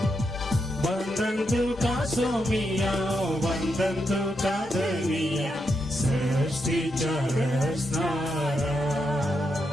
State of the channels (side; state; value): both; normal; correlation 0.83